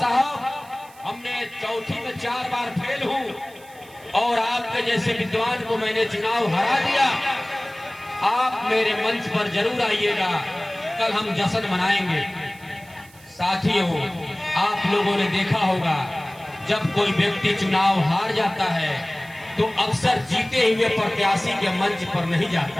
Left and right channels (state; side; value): noise; right; hiss, 24 dB below the sound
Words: हमने चौथी में 4 बार फेल हूं और आपके जैसे विद्वान को मैंने चुनाव हरा दिया। आप मेरे मंच पर जरूर आइएगा, कल हम जश्न मनाएंगे। साथियों, आप लोगों ने देखा होगा, जब कोई व्यक्ति चुनाव हार जाता है तो अक्सर जीते हुए प्रत्याशी के मंच पर नहीं